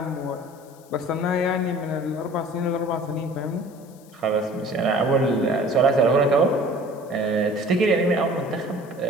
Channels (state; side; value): noise; left; hiss, 27 dB below the sound